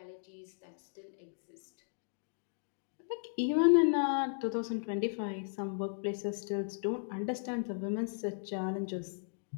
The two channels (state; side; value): silent; right; digital silence